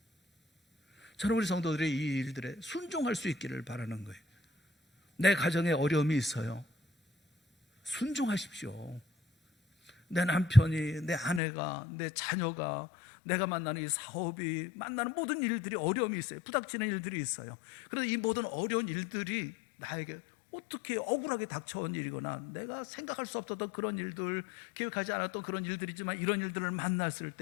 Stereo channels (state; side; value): drops out; right; at 11.4 s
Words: 저는 우리 성도들이 이 일들에 순종할 수 있기를 바라는 거예요. 내 가정에 어려움이 있어요. 순종하십시오. 내 남편이, 내 아내가, 내 자녀가, 내가 만나는 이 사업이, 만나는 모든 일들이 어려움이 있어요. 부닥치는 일들이 있어요. 그래서 이 모든 어려운 일들이 나에게 어떻게 억울하게 닥쳐온 일이거나 내가 생각할 수 없었던 그런 일들, 계획하지 않았던 그런 일들이지만 이런 일들을 만났을